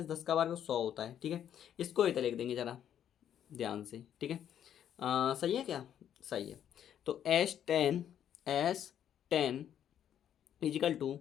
10 का वर्ग 100 होता है। ठीक है, इसको इधर लिख देंगे जरा ध्यान से। ठीक है, सही है क्या, सही है। तो S10 इजिकल टू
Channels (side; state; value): right; quieter; 9.8 dB